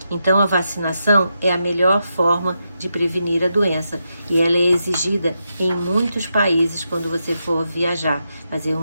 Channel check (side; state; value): both; inverted; correlation -0.85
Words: Então, a vacinação é a melhor forma de prevenir a doença e ela é exigida em muitos países quando você for viajar, fazer